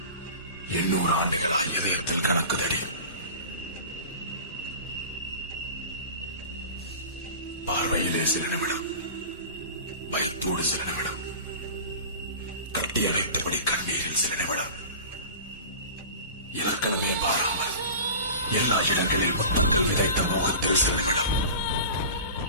800 ஆண்டுகளாய் இதயத்தில் கணக்குதடி. பார்வையிலே சில நிமிடம், பயத்தோடு சில நிமிடம், கட்டி அணைத்தபடி கண்ணீரில் சில நிமிடம், இலக்கணமே பாராமல் எல்லா இடங்களில் முத்தங்கள் விதைத்த மோகத்தில் சில நிமிடம்.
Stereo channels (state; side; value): inverted; both; correlation -0.36